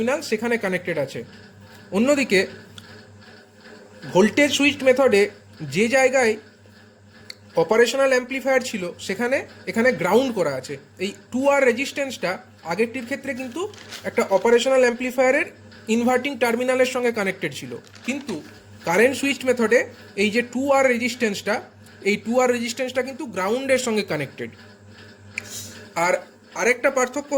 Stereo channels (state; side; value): identical; both; correlation 1.00